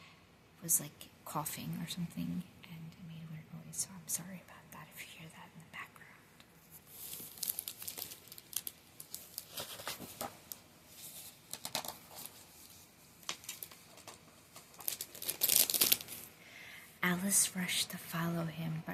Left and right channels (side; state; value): both; identical; correlation 1.00